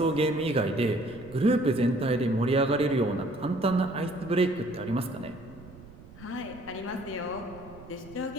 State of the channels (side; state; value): right; noise; rumble, 19 dB below the sound